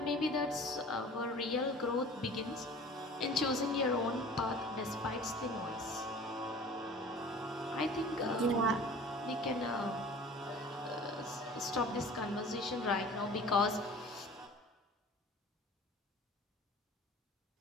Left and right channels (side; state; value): both; normal; correlation 0.44